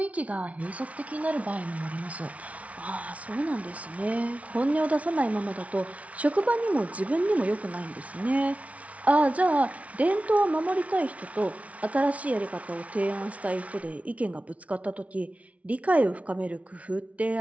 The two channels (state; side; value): late; left; 0.066 ms